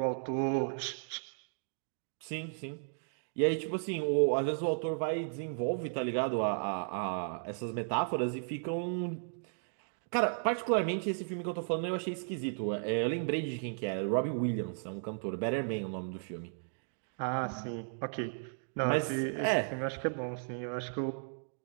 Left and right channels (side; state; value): left; silent; digital silence